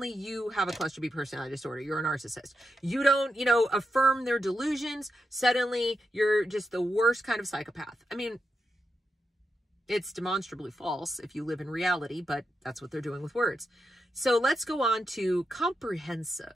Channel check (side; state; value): both; normal; correlation 0.86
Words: you have a cluster B personality disorder. You're a narcissist. You don't, affirm their delusions, suddenly you're just the worst kind of psychopath. I mean, it's demonstrably false if you live in reality, but that's what they're doing with words. So let's go on to